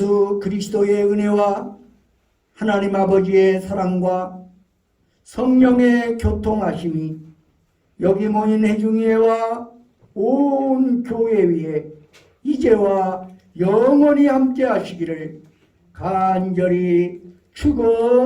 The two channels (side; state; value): both; identical; correlation 1.00